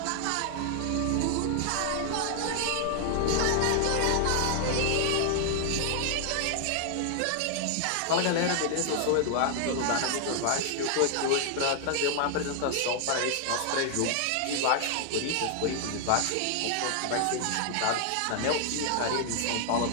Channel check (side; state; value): both; different; correlation 0.00